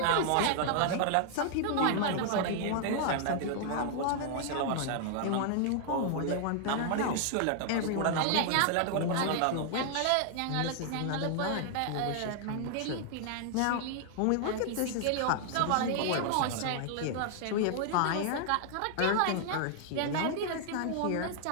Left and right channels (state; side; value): different; both; correlation 0.00